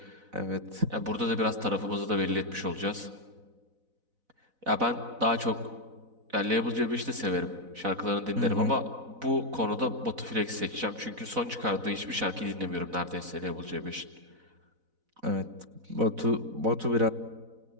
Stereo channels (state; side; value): late; left; 4.0 ms